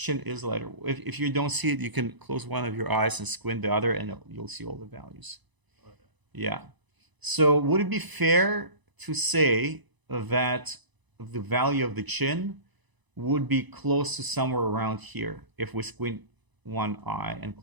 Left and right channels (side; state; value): left; late; 1.0 ms